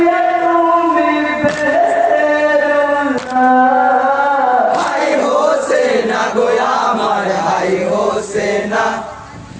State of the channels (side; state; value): both; identical; correlation 1.00